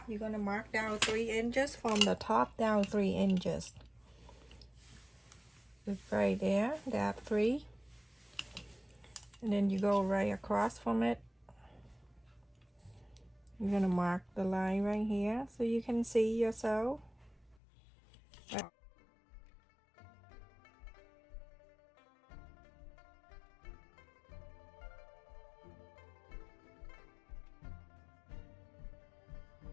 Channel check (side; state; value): right; drops out; at 17.6 s